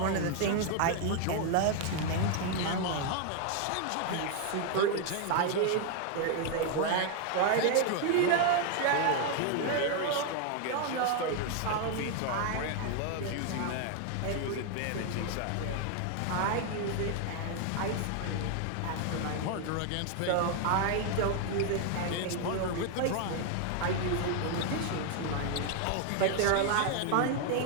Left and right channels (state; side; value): different; both; correlation 0.00